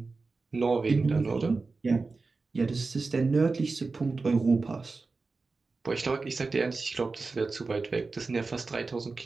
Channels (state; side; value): quieter; left; 4.0 dB